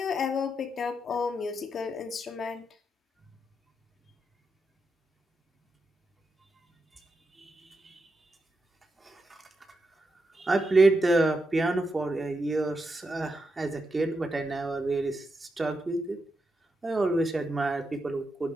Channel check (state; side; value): normal; both; correlation 0.85